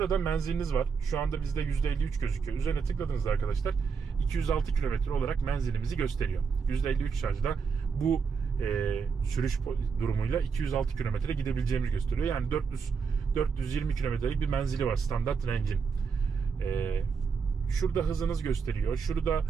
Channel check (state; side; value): quieter; left; 5.7 dB